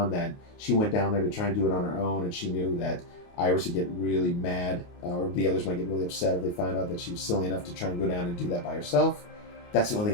that she went down there to try and do it on her own, and she knew that Iris would get really mad, or the others might get really upset if they found out that she was silly enough to try and go down and do that by herself. That's the only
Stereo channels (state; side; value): late; right; 28 ms